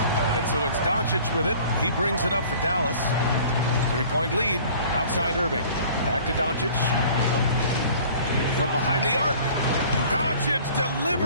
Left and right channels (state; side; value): inverted; both; correlation -0.49